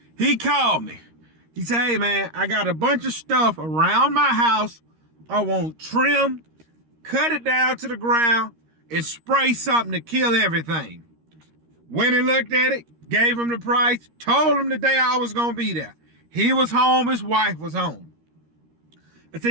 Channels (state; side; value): late; left; 13 ms